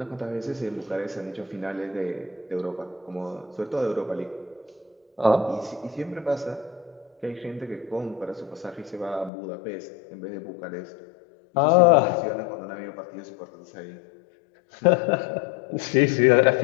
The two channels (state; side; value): drops out; right; at 9.3 s